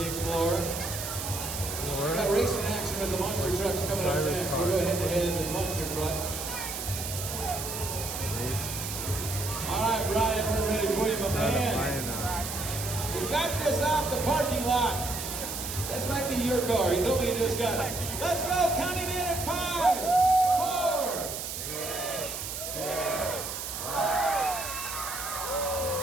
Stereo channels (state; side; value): noise; right; hiss, 6 dB below the sound